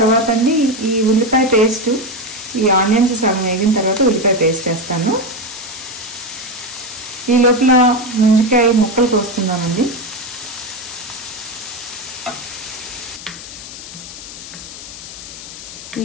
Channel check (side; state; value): left; noise; hiss, 13 dB below the sound